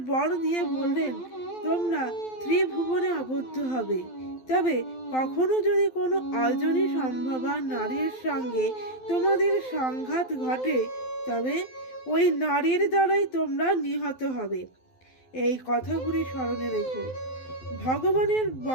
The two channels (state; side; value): late; right; 12 ms